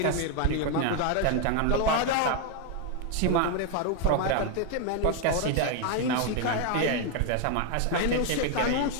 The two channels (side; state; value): both; different; correlation 0.01